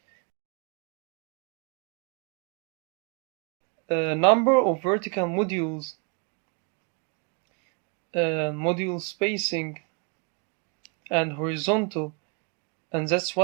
Number of vertical modules, module spacing, and horizontal, and that's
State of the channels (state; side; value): quieter; left; 34.7 dB